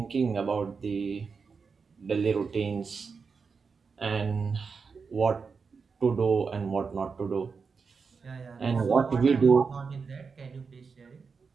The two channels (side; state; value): left; quieter; 5.2 dB